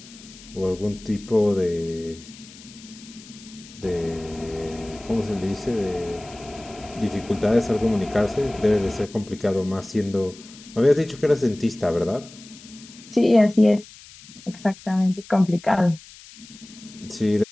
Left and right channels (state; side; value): noise; left; hiss, 20 dB below the sound